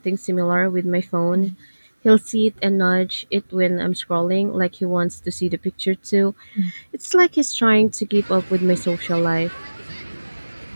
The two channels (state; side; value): inverted; both; correlation -1.00